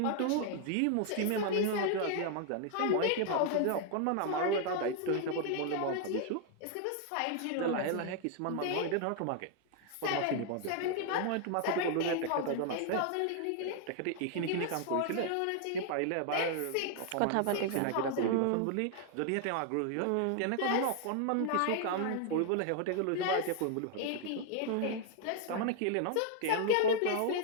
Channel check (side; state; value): both; different; correlation 0.00